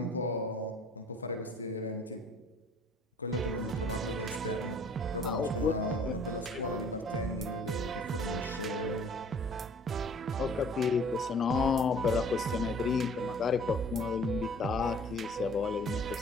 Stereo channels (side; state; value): both; normal; correlation 0.52